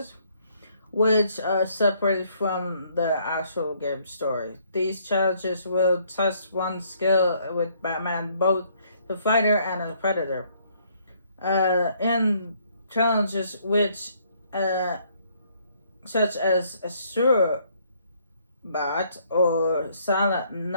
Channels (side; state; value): both; inverted; correlation -0.66